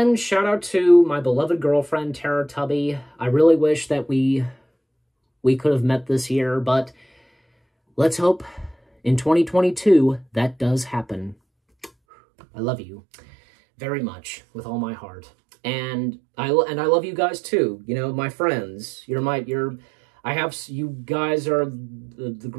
shout out to my beloved girlfriend, Tara Tubby. I really wish that we could have met this year, but let's hope in 2022 that does happen. I love you very much with all my heart. And I love you guys too. You know, my friends. You guys are the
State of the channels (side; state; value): left; drops out; at 11.9 s